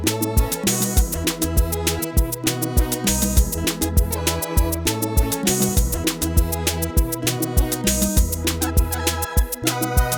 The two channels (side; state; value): both; identical; correlation 1.00